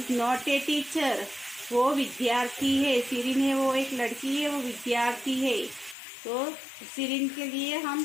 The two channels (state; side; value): drops out; right; at 6.0 s